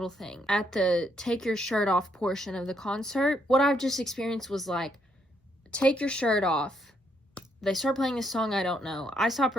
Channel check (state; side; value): normal; both; correlation 0.74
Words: thing. At the take your shirt off portion of the concert, what I've just experienced was like take your shirt off. They start playing a song I don't know. I stop